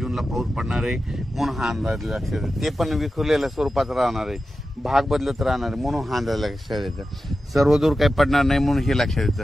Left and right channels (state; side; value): normal; both; correlation 0.92